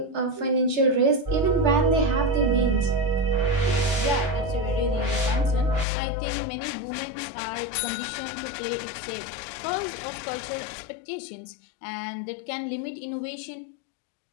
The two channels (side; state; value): right; drops out; at 5.9 s